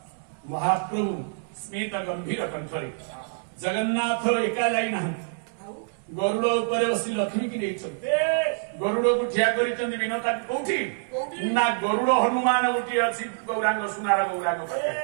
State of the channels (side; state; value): left; silent; 61 dB below the other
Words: महाप्रभु स्मित गंभीर कंठरे जगन्नाथ एका जाई नाहंती गरुड़ ऊपर बसी लक्ष्मी की नहीं गरुड़ को ठिया कर विनता कौटी ना गरुड़ हनुमान गोटे अच्छी गौरांग सुनार गौरांग